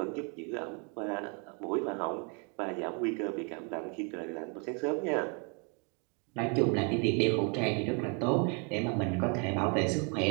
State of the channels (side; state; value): left; quieter; 35.8 dB